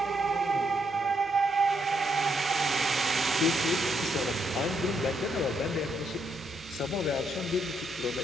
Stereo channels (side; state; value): both; normal; correlation 0.76